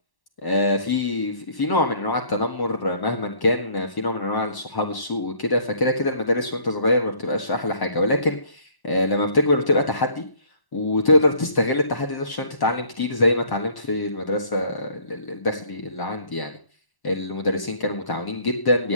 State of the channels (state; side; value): late; right; 1.1 ms